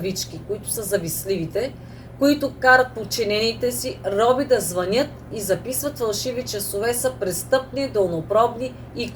които са завистливите, които карат подчинените си роби да звънят и записват фалшиви часове, са престъпни, дълнопробни и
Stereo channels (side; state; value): both; identical; correlation 1.00